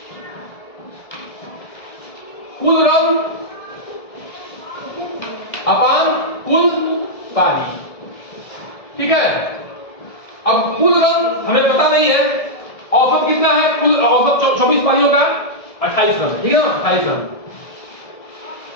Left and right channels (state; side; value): late; right; 1.7 ms